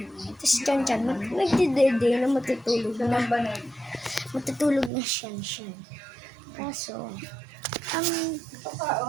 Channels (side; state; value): left; drops out; at 4.9 s